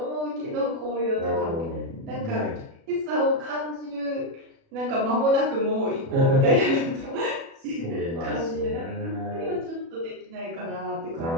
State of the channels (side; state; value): left; late; 36 ms